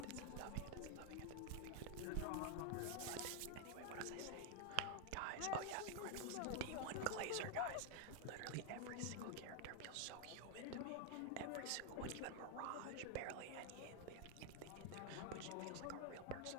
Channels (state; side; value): different; both; correlation 0.01